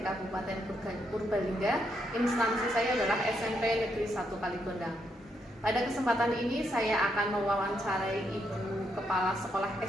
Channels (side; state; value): both; normal; correlation 0.78